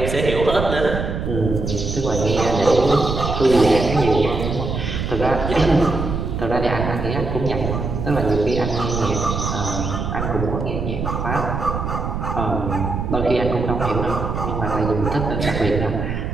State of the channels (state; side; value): noise; right; rumble, 3 dB below the sound